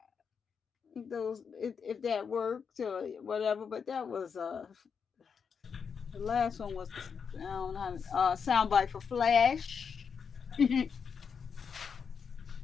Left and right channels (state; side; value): quieter; right; 6.3 dB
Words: if that worked or whatever, but that was the last one was the soundbite for Flash. You